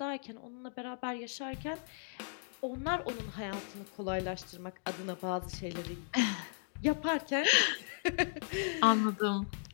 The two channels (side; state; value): right; silent; digital silence